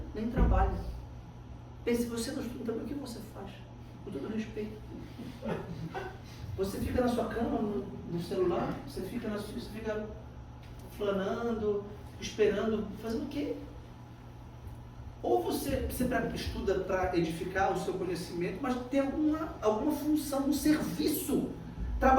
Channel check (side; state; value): both; identical; correlation 1.00